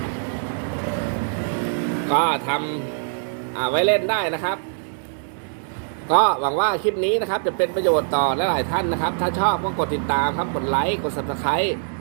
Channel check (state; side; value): silent; left; digital silence